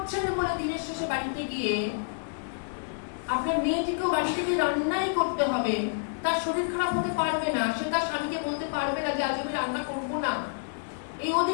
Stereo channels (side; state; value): right; silent; digital silence